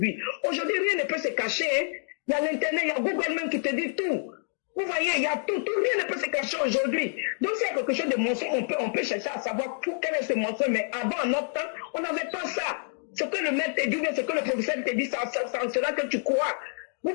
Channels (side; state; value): right; silent; digital silence